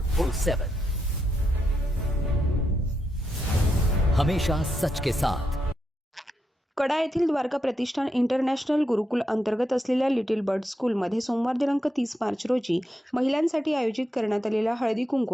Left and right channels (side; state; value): both; normal; correlation 0.83